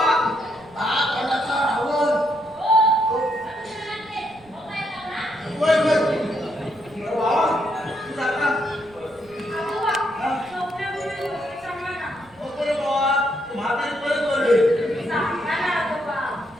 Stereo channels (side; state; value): right; noise; rumble, 27 dB below the sound